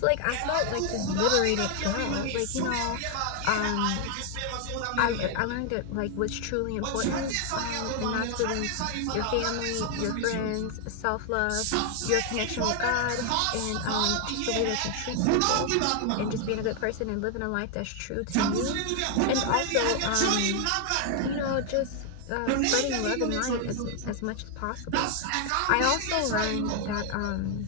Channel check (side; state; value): both; different; correlation 0.00